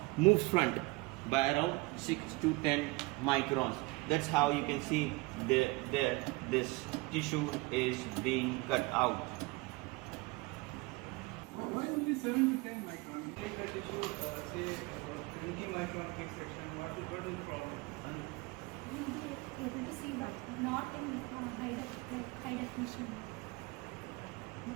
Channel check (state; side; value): quieter; left; 24.4 dB